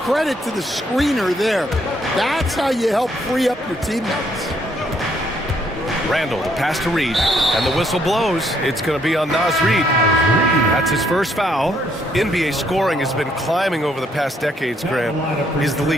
to the screener there. That's how you help free up your teammates. Randle, the pass to Reid, and the whistle blows. It's going to be on Naz Reid. That's his first foul. NBA scoring has been climbing over the past decades, Grant. Is the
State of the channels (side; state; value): both; normal; correlation 0.70